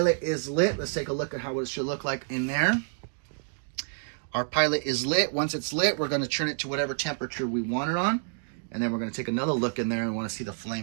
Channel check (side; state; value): left; silent; digital silence